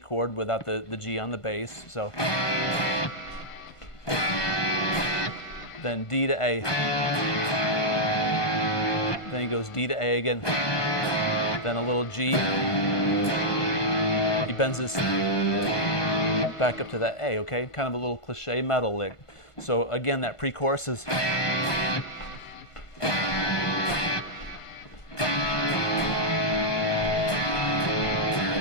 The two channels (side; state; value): right; late; 1.5 ms